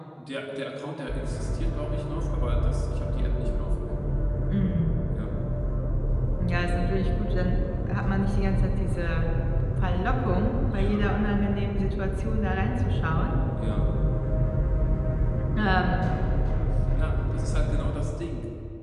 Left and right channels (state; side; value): identical; both; correlation 1.00